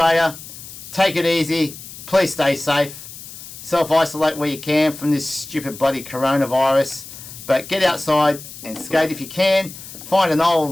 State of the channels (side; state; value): left; noise; hiss, 14 dB below the sound